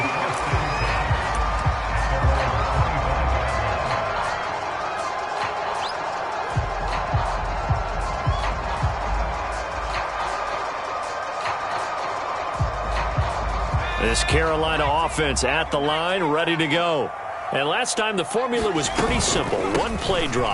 This Carolina offense at the line, ready to go. And last time the formula was pretty simple. One play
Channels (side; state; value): both; identical; correlation 1.00